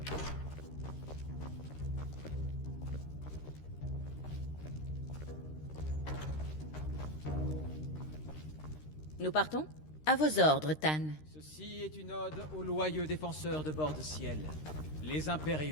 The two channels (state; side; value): late; right; 13 ms